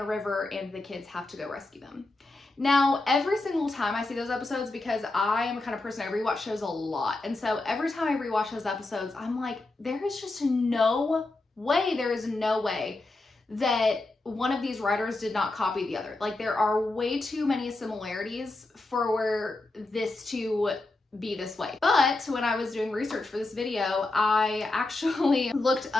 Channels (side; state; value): right; quieter; 3.0 dB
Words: river and the kids have to go rescue them. Now, every single time I see those episodes, because I am a kind of person, I rewatch shows a lot, and so every time I rewatch those episodes, I'm like, there is no way that one of these writers did not copy the other. Like, there are way too many similarities for this to be this way. But when I was doing research for this video, I actually looked